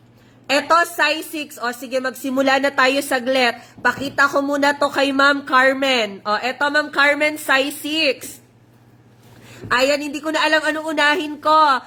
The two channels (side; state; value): both; identical; correlation 1.00